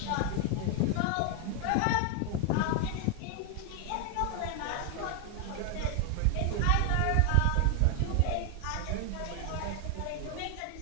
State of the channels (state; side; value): different; both; correlation 0.00